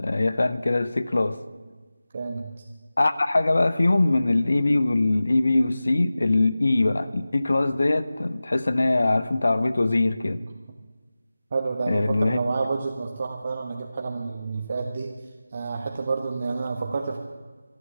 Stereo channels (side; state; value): both; inverted; correlation -0.96